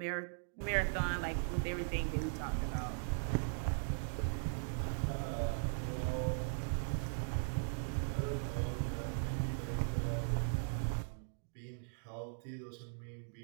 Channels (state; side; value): silent; left; digital silence